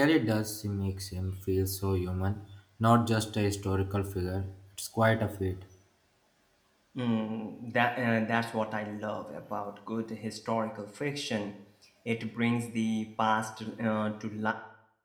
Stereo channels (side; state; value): both; identical; correlation 1.00